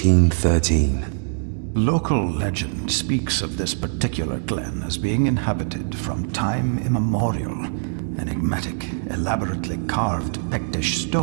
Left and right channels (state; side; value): silent; left; 63 dB below the other